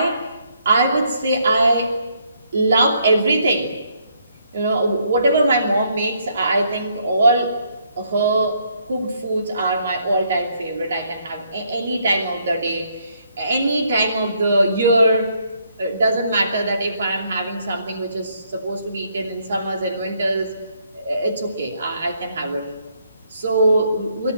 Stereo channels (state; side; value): inverted; both; correlation -0.71